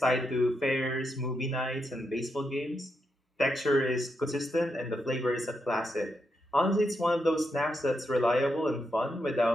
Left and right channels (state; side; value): normal; both; correlation 0.83